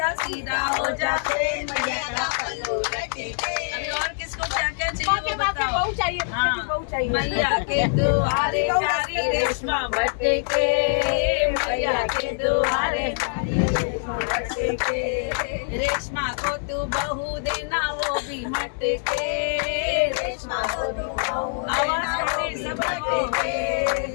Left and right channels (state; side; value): silent; right; digital silence